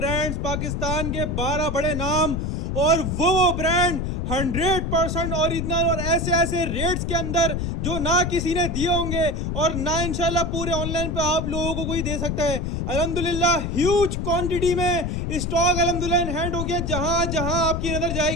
पाकिस्तान के 12 बड़े नाम, और वो ब्रांड 100% ओरिजिनल और ऐसे ऐसे रेट्स के अंदर जो ना किसी ने दिए होंगे और ना इंशाल्लाह पूरे ऑनलाइन पे आप लोगों को कोई दे सकता है। अल्हम्दुलिल्लाह ह्यूज क्वांटिटी में स्टॉक अल्हम्दुलिल्लाह इन हैंड हो गया। जहां जहां आपकी नजर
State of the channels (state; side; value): noise; left; rumble, 2 dB below the sound